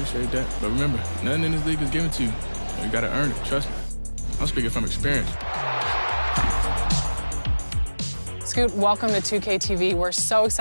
But remember, nothing in this league is given to you. You got to earn it. Trust me. I'm speaking from experience. Scoot, welcome to 2K TV. We're so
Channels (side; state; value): both; inverted; correlation -1.00